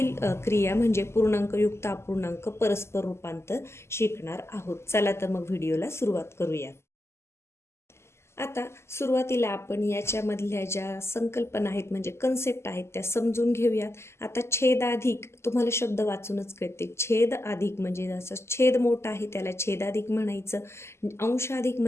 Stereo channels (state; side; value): late; right; 0.13 ms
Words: क्रिया म्हणजे पूर्णांकयुक्त अपूर्णांक परस्पर रूपांतर शिकणार आहोत. चला तर मग व्हिडिओला सुरुवात करूया. आता सुरुवातीला आपण याच्यामधल्या ज्या संकल्पना आहेत म्हणजे कन्सेप्ट आहेत त्या समजून घेऊयात. आता छेदाधिक तुम्हाला शब्द वाचूनच कळते. छेद अधिक म्हणजे जसं छेद मोठा आहे त्याला छेदाधिक म्हणायचं, अंशाधिक